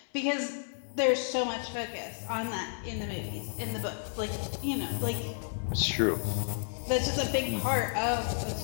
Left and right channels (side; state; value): right; silent; digital silence